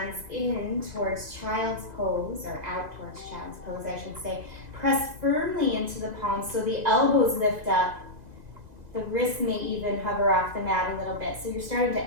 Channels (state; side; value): late; left; 2.0 ms